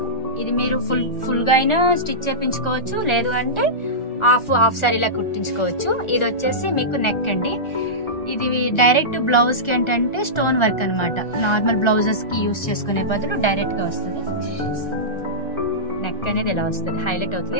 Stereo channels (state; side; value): late; right; 1.4 ms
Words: ఇది మీరు ఫుల్ గా అయినా స్టిచ్ చేయించుకోవచ్చు, లేదు అంటే హాఫ్ సారీలా కుట్టించుకోవచ్చు. ఇది వచ్చేసి మీకు నెక్ అండి. ఇది డైరెక్ట్ బ్లౌజ్ కి ఏంటంటే స్టోన్ వర్క్ అనమాట. నార్మల్ బ్లౌజెస్ కి యూస్ చేసుకునే బదులు డైరెక్ట్ గా వస్తుంది. నెక్ అనేది ఇలా వస్తుంది, హైలైట్ అవుతుంది.